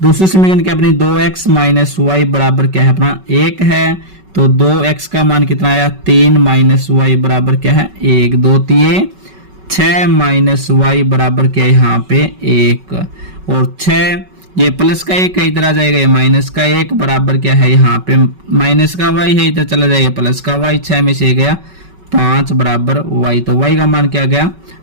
दूसरी समीकरण क्या अपनी 2x माइनस वाई बराबर क्या है अपना 1 है, तो 2x का मान कितना आया 3 माइनस वाई बराबर क्या है 1, 2 3 6 माइनस वाई बराबर क्या है यहाँ पे 1, और 6 ये प्लस का 1 है इधर आ जाएगा, ये माइनस का 1 बराबर क्या है यहाँ पे माइनस का y है इधर चला जाएगा प्लस का y, 6 में से गया 5 बराबर y, तो y का मान क्या गया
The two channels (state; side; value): late; left; 5.3 ms